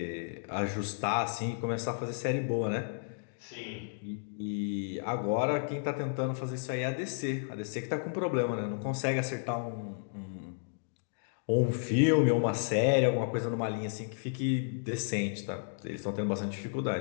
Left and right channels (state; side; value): silent; right; digital silence